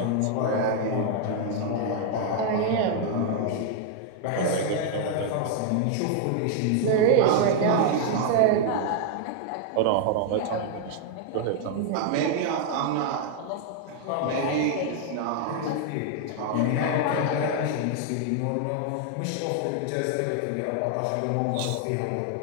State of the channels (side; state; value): both; different; correlation 0.00